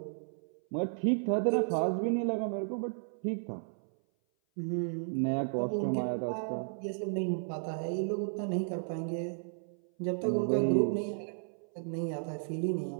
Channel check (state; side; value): silent; left; 55 dB below the other